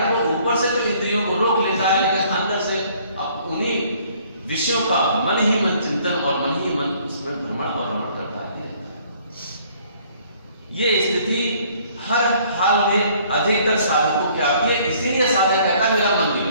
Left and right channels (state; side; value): inverted; both; correlation -0.60